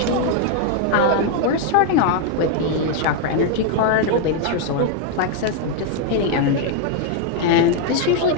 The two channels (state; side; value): different; both; correlation 0.00